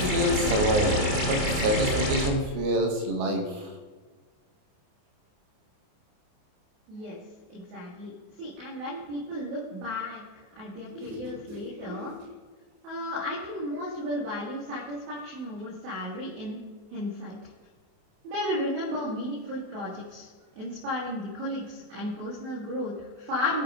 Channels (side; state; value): left; late; 28 ms